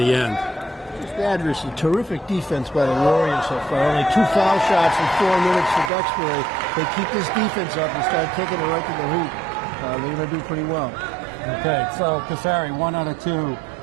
end. Adversely, terrific defense by the Warriors so far. Only 2 foul shots in 4 minutes for Duxbury. They keep this defense up and start taking it right to the hoop. They're going to do pretty well. Okay, so Casari, 1 out of 2.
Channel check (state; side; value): drops out; left; at 5.9 s